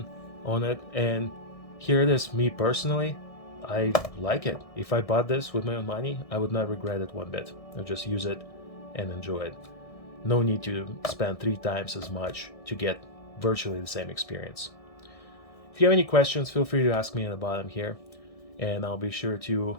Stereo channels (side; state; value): right; late; 1.6 ms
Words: on it, and here it is. Me personally, I like it. If I bought this with my own money, I would not regret it one bit. I'll just use it and enjoy it. No need to spend 3 times as much to get virtually the same experience. If you have any questions, feel free to ask me in the bottom here, and I'll be sure to